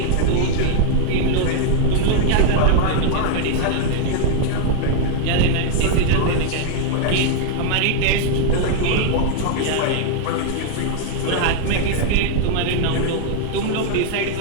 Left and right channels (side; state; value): both; different; correlation 0.00